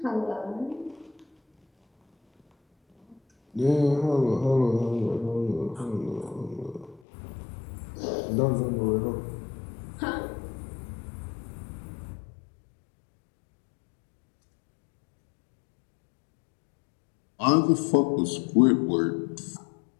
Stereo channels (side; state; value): right; drops out; at 7.0 s